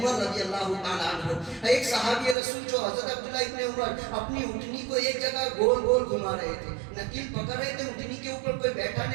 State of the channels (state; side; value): drops out; left; at 2.4 s